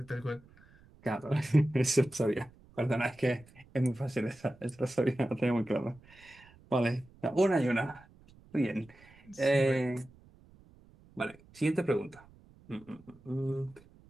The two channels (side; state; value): right; noise; rumble, 26 dB below the sound